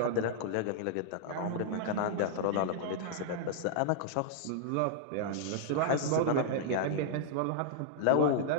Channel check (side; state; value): both; different; correlation -0.01